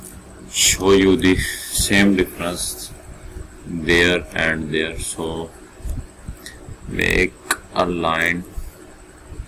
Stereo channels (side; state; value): both; identical; correlation 1.00